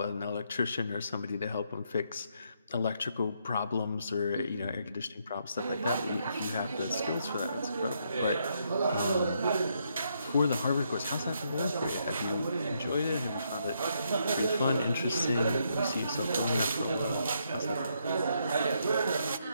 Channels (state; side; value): inverted; both; correlation -0.76